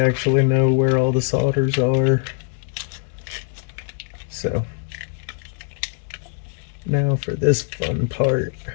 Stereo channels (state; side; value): silent; right; 64 dB below the other